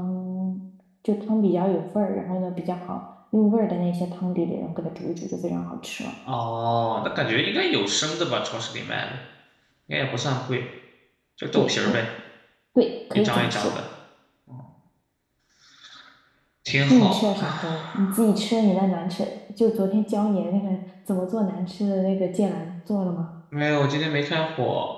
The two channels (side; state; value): both; identical; correlation 1.00